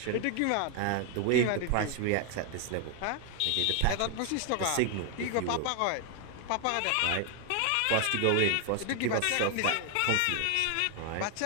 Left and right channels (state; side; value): different; both; correlation 0.00